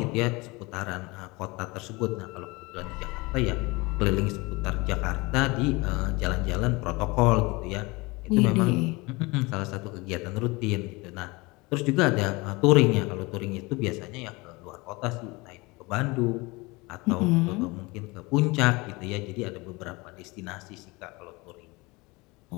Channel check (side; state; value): right; quieter; 24.5 dB